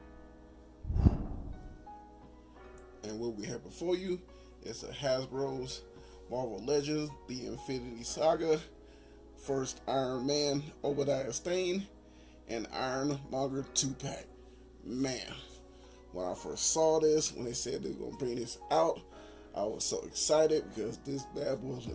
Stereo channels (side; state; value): both; identical; correlation 1.00